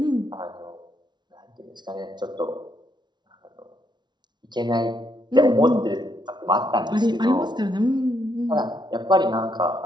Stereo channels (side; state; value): left; late; 0.21 ms